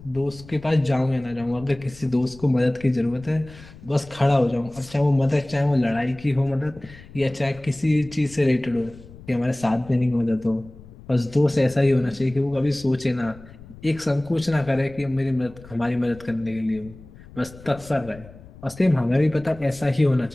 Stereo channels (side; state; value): left; noise; rumble, 19 dB below the sound